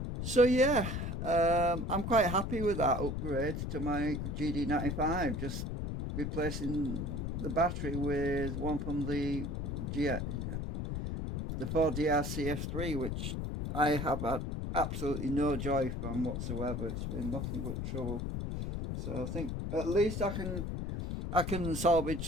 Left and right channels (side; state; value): left; noise; rumble, 3 dB below the sound